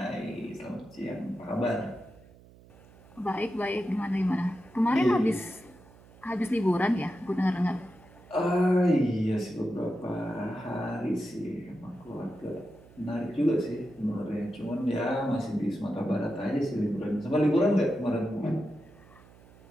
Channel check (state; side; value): noise; right; hum, 24 dB below the sound